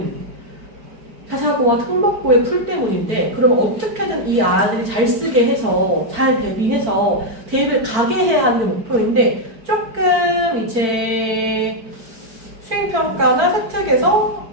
자사고와 특목고의 풀 때문인데 그럼 어떻게든 이 아이들이 잘 쓰게 해서 잘 대비해서 대입을 가게 해야 하는 게 목표인데 조금 이제 수행평가나 세특에서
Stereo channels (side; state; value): left; late; 4.5 ms